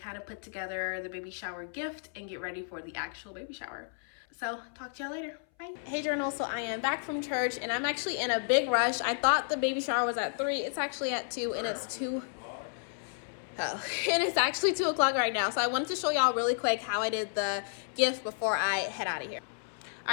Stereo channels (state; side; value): silent; right; 56 dB below the other